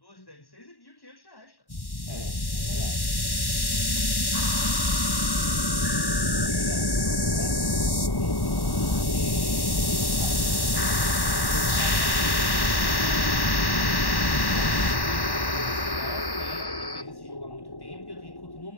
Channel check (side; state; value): right; late; 1.1 ms